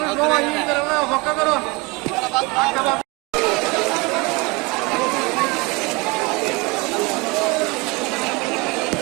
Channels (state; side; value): quieter; left; 26.4 dB